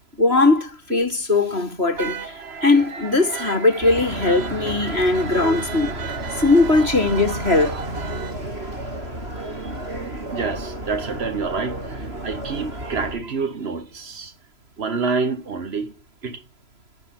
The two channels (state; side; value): late; left; 3.0 ms